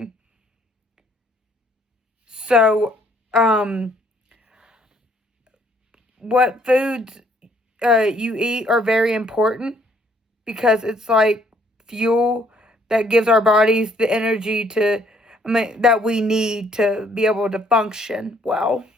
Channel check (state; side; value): normal; both; correlation 0.65